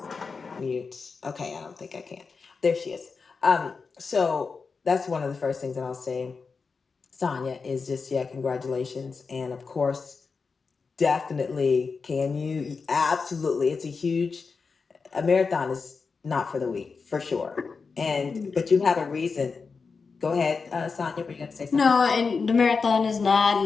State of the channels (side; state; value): right; quieter; 4.9 dB